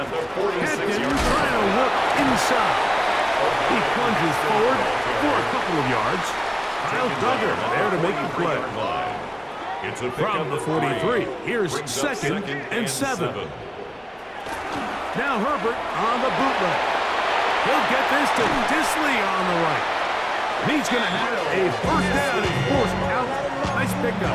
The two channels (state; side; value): identical; both; correlation 1.00